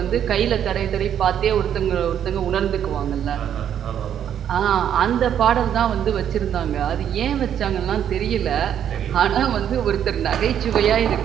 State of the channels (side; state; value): left; quieter; 9.5 dB